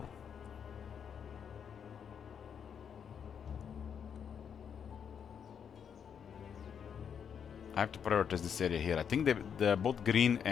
I have to prioritize this area here. I think both green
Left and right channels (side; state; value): right; quieter; 7.6 dB